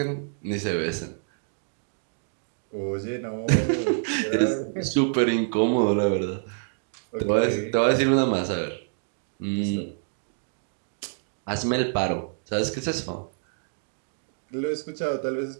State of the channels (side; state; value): left; silent; digital silence